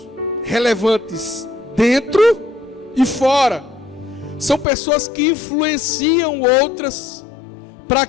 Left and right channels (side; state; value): right; drops out; at 4.7 s